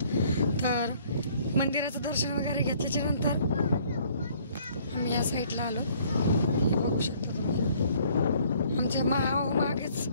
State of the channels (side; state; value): both; inverted; correlation -0.60